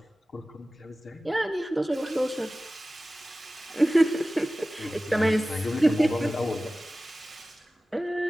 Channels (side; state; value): both; normal; correlation 0.96